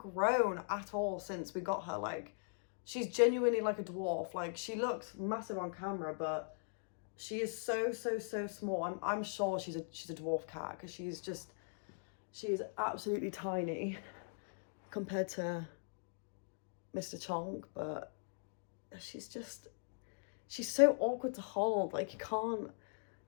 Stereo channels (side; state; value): right; silent; digital silence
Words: at all since we got her. Like, she's genuinely like a dwarf. Like, she looks massive on camera, but she is so small. I'm sure she's a dwarf cat, because she is absolutely tiny compared to Mr. Chonk. But she's so awkward to hold. Like, you